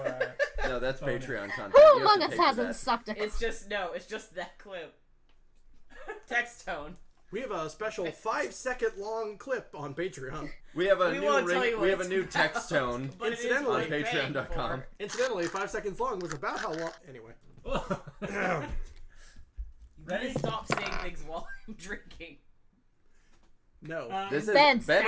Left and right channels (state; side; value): identical; both; correlation 1.00